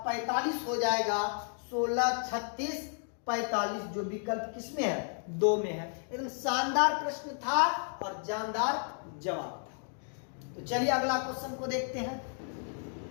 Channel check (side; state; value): right; silent; 56 dB below the other